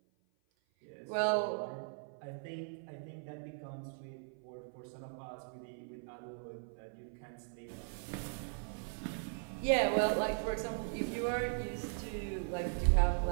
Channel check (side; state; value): left; silent; 52 dB below the other